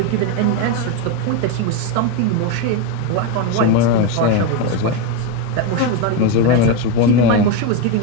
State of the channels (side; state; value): both; different; correlation 0.04